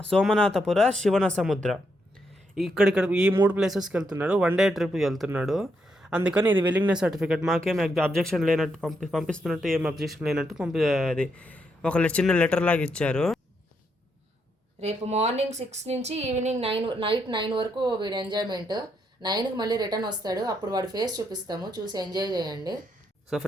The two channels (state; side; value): normal; both; correlation 0.78